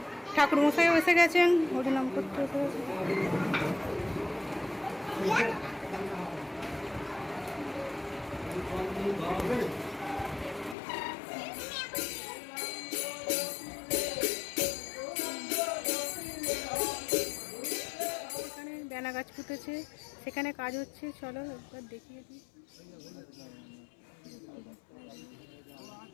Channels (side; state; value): right; drops out; at 10.8 s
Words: ঠাকুরমশাইও এসে গেছেন, হরিনাম করতে এসে গেছে। এখানে বেনা গাছ পুঁতেছে, সেখানে কাজ হচ্ছে, চলো একবার দেখিয়ে দিই।